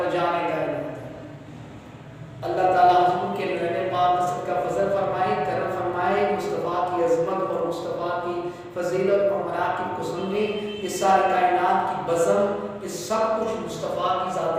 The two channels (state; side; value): identical; both; correlation 1.00